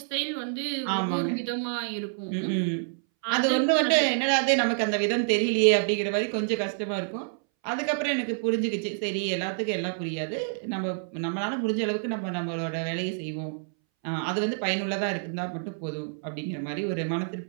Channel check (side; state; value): left; silent; 60 dB below the other